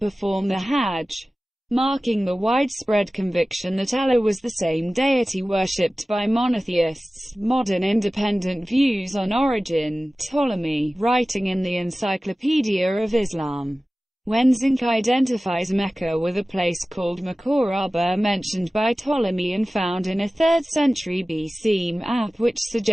the Hajj, marking the widespread conviction that Allah was the same deity worshipped by monotheists. Modern independent views on origin. Ptolemy, writing in the Encyclopedia of Islam, Wenzink identifies Mecca with a place called Makoraba mentioned by Ptolemy and found in a 3rd century BC map which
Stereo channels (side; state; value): both; normal; correlation 0.96